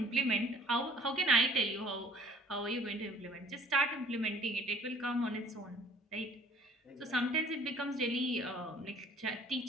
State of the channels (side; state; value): both; normal; correlation 0.53